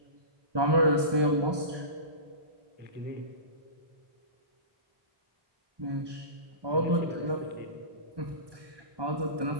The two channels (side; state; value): left; late; 1.2 ms